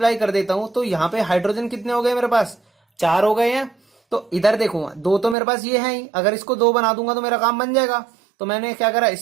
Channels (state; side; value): drops out; left; at 5.4 s